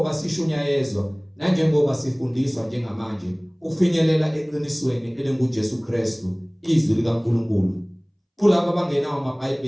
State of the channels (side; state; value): both; identical; correlation 1.00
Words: sishunyayezwa nanjengoba sifundiswa njengamanje ukufinyelela eqinisweni elinguJesu Kristu izwi likaNkulunkulu. Kulabo abangenawo